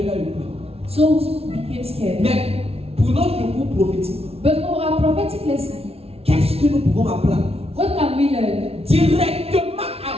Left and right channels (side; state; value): left; late; 0.29 ms